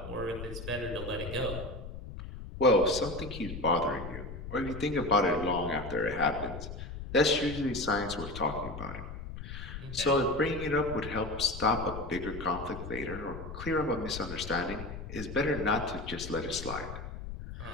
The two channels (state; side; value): noise; left; rumble, 9 dB below the sound